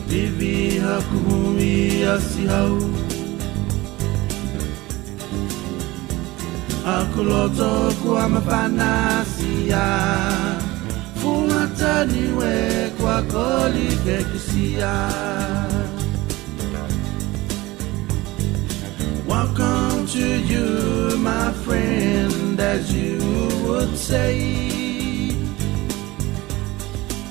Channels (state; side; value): quieter; left; 20.1 dB